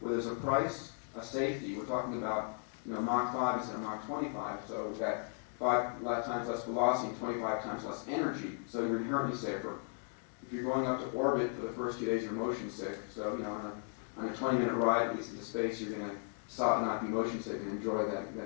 there's a price, a safety. We're talking about, you know, Mach 5 instead of Mach 25, so we've got 5 times less velocity and 25 times less energy, so you're inherently safer. If you're going up to orbit for the first few days, you're motion sick. So, you know, on a 20-minute ride, at least into space, you're going to stop and not be motion sick and enjoy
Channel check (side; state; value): right; silent; 54 dB below the other